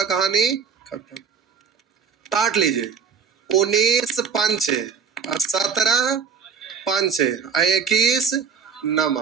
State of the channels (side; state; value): left; quieter; 6.4 dB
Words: कहानी खत्म। काट लीजिए, 19 पंच 17 पंच 21 नमा,